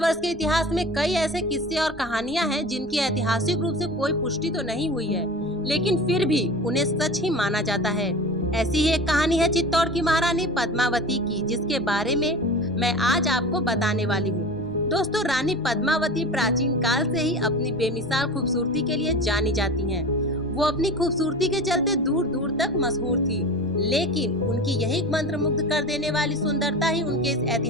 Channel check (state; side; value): noise; right; rumble, 21 dB below the sound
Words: के इतिहास में कई ऐसे किस्से और कहानियां हैं जिनकी ऐतिहासिक रूप से कोई पुष्टि तो नहीं हुई है, लेकिन फिर भी उन्हें सच ही माना जाता है। ऐसी ही एक कहानी है चित्तौड़ की महारानी पद्मावती की, जिसके बारे में मैं आज आपको बताने वाली हूँ। दोस्तों, रानी पद्मावती प्राचीन काल से ही अपनी बेमिसाल खूबसूरती के लिए जानी जाती हैं। वो अपनी खूबसूरती के चलते दूर दूर तक मशहूर थी, लेकिन उनकी यही मंत्रमुग्ध कर देने वाली सुंदरता ही उनके इस